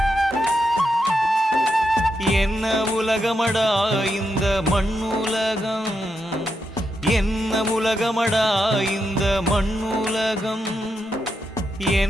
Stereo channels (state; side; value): normal; both; correlation 0.84